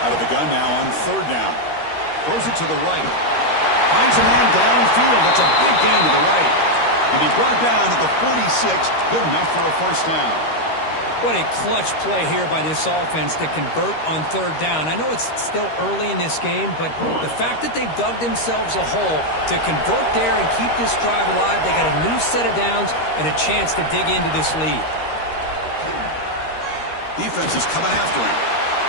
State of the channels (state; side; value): late; right; 13 ms